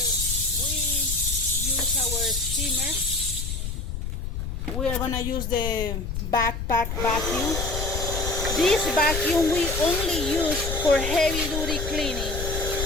we use our steamer, we are gonna use the backpack vacuum. This vacuum we only use for heavy duty cleaning,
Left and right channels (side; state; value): left; noise; rumble, 4 dB below the sound